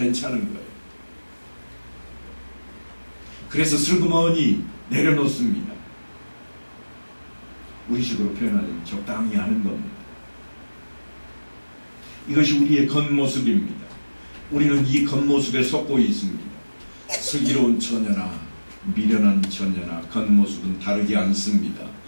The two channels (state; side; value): inverted; both; correlation -1.00